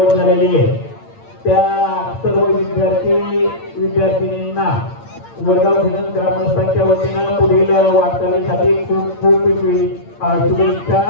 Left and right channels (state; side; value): late; right; 8.8 ms